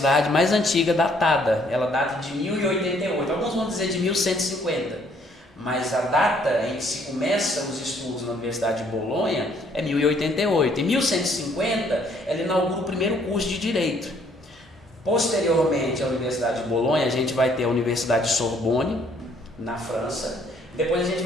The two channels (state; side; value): normal; both; correlation 0.64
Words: mais antiga datada, ela data de 1088, alguns vão dizer de 1150, mas a data em que se começa os estudos na Universidade de Bolonha é 1088. Em 1150 ela inaugura o primeiro curso de Direito. Posteriormente à Universidade de Bolonha a gente vai ter a Universidade de Sorbonne, na França. Depois a gente